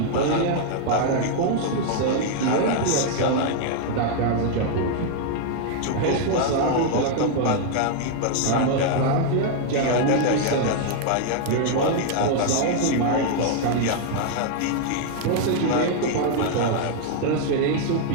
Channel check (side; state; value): both; different; correlation 0.00